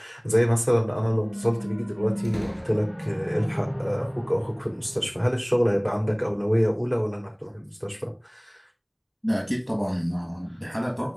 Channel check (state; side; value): identical; both; correlation 1.00